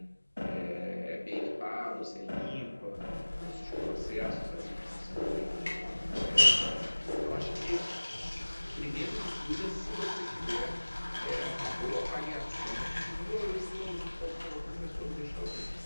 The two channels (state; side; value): inverted; both; correlation -1.00